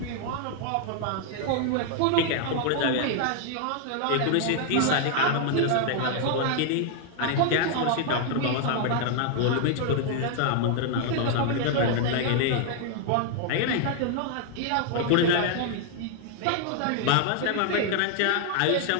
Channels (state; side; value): different; both; correlation 0.00